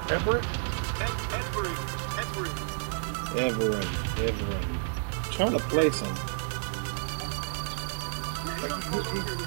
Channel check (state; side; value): silent; left; 58 dB below the other